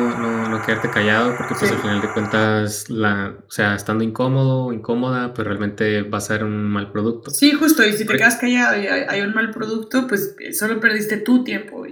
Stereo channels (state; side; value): identical; both; correlation 1.00